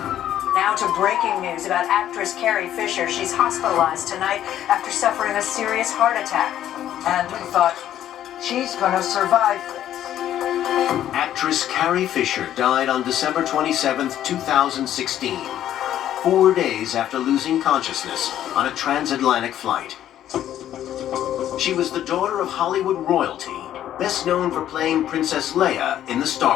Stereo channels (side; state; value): right; quieter; 11.5 dB